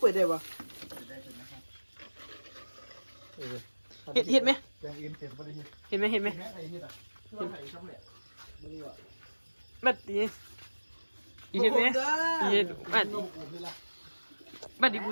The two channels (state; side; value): inverted; both; correlation -1.00